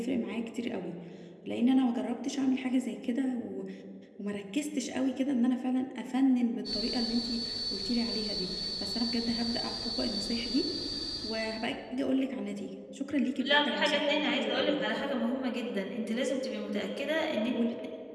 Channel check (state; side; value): identical; both; correlation 1.00